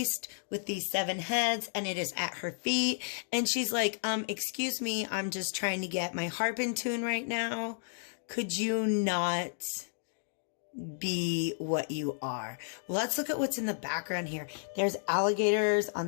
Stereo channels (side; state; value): right; silent; digital silence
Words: with these 7 heads, and it is at her feet. And she's like, excuse me, I'm just trying to get my harp in tune right now. Could you not be what you are? Let's look at what's in the background here. There's alligators on